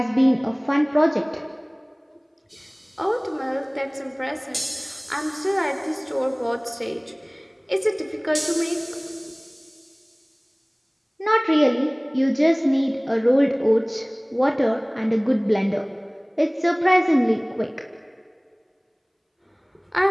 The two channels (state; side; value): identical; both; correlation 1.00